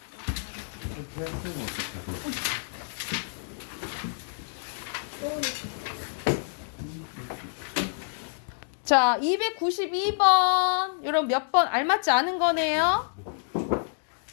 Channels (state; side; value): silent; right; digital silence